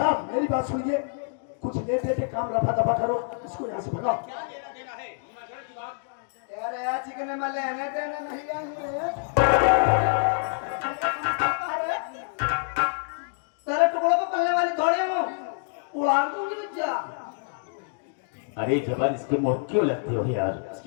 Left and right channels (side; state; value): right; silent; digital silence